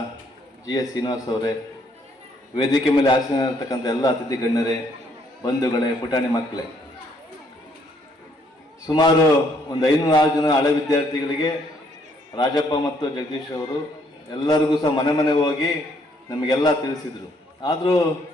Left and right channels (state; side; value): normal; both; correlation 0.68